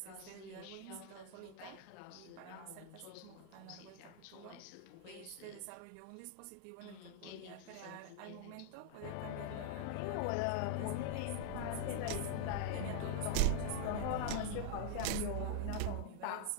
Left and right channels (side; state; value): both; different; correlation 0.00